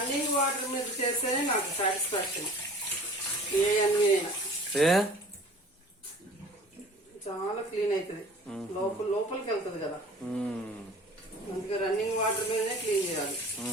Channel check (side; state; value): both; normal; correlation 0.45